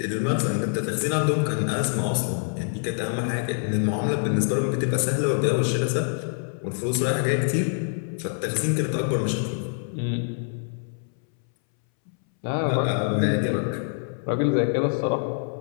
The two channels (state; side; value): silent; right; 61 dB below the other